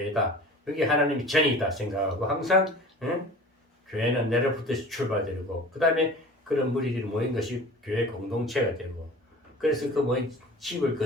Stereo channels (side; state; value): both; normal; correlation 0.41